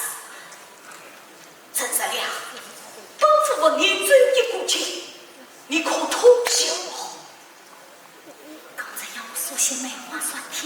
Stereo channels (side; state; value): both; identical; correlation 1.00